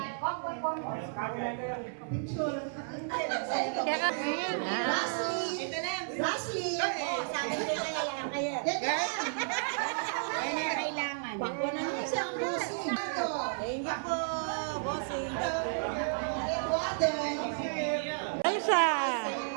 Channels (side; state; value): left; silent; 56 dB below the other